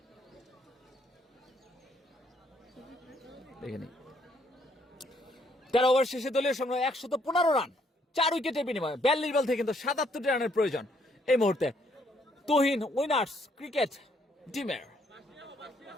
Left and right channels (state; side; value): normal; both; correlation 0.69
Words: দেখে নিই 13 ওভার শেষে দলীয় সংগ্রহ 115 রান, 4 উইকেটের বিনিময়ে 42 বল থেকে কিন্তু 77 রানের প্রয়োজন এই মুহূর্তে তুহিন উইনার্স ক্রিকেট টিমের।